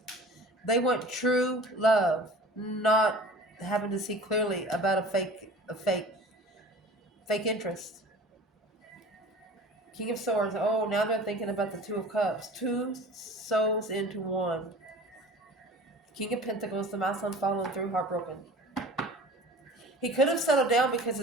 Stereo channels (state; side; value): normal; both; correlation 0.42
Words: They want true love, not having to see clearly about a fake interest. King of Swords. Oh, now they're thinking about the Two of Cups. 2 souls into 1. King of Pentacles, the masculine following through, heartbroken. He could have settled down because